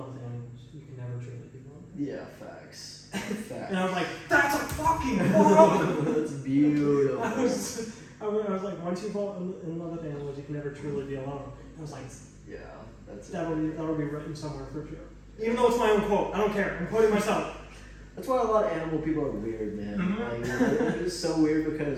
with animals, you can never truly be lonely. Yeah, facts. Facts. And I was like, that's a fucking quote! That's beautiful. I was like, once you fall in love with animals, you can never truly be alone. I was like, Yeah, that's that'll be written somewhere for sure. Even though it's my own quote, I don't care. I'm quoting myself. That's why a lot of animal people are weird, man. Mhm. Like, they're just so weird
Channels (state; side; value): identical; both; correlation 1.00